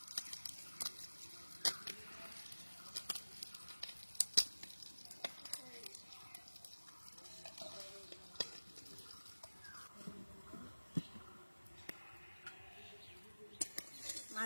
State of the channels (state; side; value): inverted; both; correlation -1.00